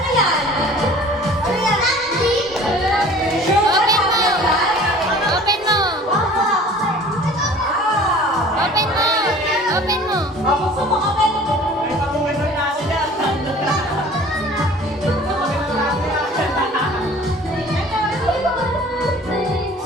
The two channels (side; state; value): both; normal; correlation 0.47